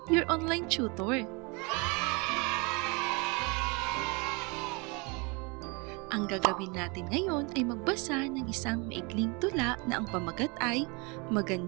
your online tutor. Ang gagawin natin ngayon ay magbasa ng isang maikling tula na ang pamagat ay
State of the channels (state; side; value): quieter; left; 29.9 dB